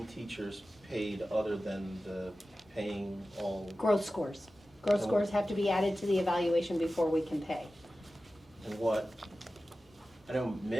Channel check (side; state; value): both; normal; correlation 0.95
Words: teachers paid other than the paying all? Growth scores. Growth scores have to be added to the evaluation before we can pay. And what, I know